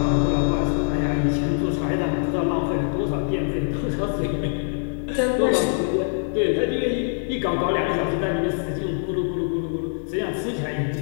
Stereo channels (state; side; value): silent; right; 62 dB below the other